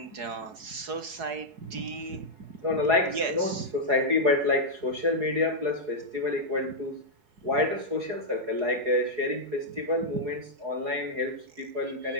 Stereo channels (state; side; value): late; left; 4.8 ms